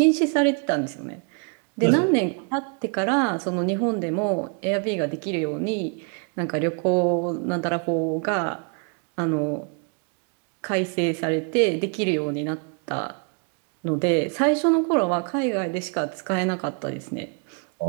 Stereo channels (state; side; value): quieter; left; 38.0 dB